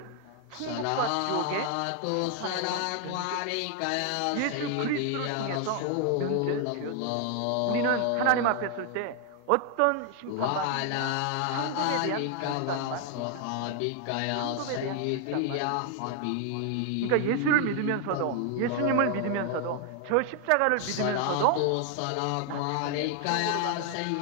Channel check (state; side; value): different; both; correlation 0.00